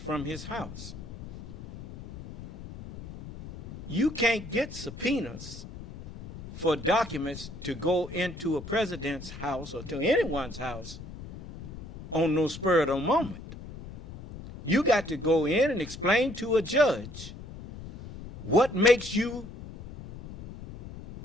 his house. You can't get subpoenas for documents to go into a president's house or to anyone's house on no spur of the moment. You got to go in and explain to a judge what makes you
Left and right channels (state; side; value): noise; left; rumble, 13 dB below the sound